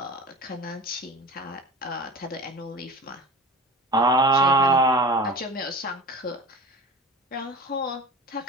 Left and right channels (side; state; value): both; normal; correlation 0.35